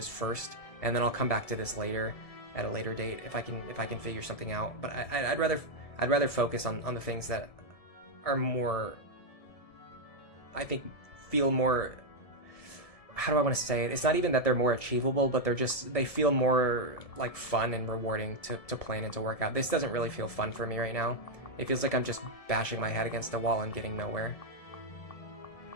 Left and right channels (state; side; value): late; right; 1.7 ms